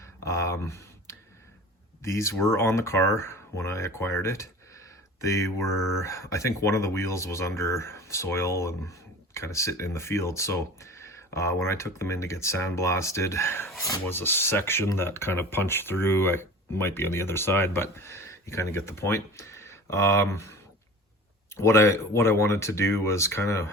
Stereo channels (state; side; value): normal; both; correlation 0.39